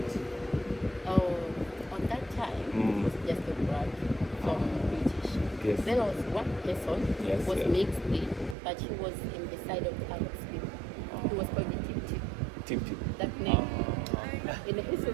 Oh, on that time, it was just a black from British. Yes. There was one person Yes, who was yeah. mixed in, but he was in the side of the Arab people. He was called the Tip Tip. Tip. That name. In the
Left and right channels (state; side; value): drops out; left; at 8.6 s